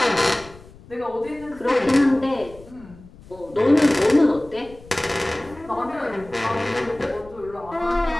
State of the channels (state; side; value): noise; left; rumble, 21 dB below the sound